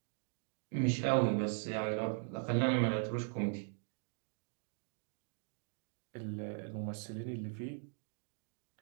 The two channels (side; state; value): left; silent; 51 dB below the other